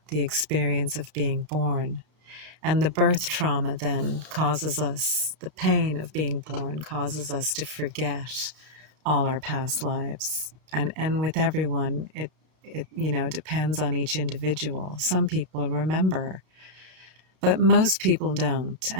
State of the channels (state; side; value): late; left; 32 ms